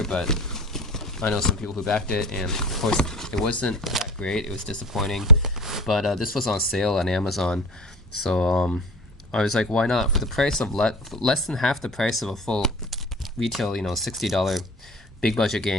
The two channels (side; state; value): both; normal; correlation 0.38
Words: but I know some people who backed it, and of course it wasn't that great. It was disappointing, but this was on sale on Amazon, so I was like, why not? For the price of less than half the price of a full retail, $60 big budget